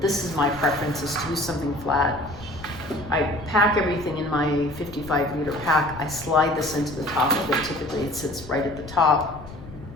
this is my preference, is to use something flat. I pack everything in my 55-liter pack. I slide this into the top of it. Typically it sits right at the top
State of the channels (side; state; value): left; noise; rumble, 16 dB below the sound